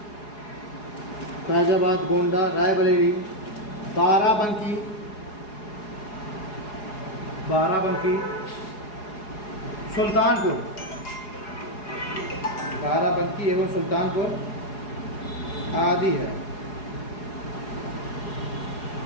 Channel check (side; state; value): right; late; 4.8 ms